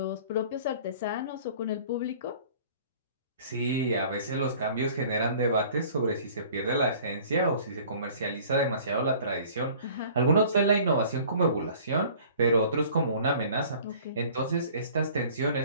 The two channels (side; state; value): both; inverted; correlation -0.49